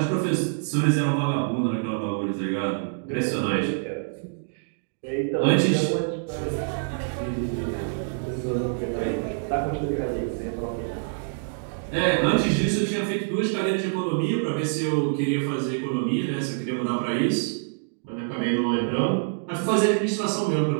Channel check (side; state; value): left; silent; digital silence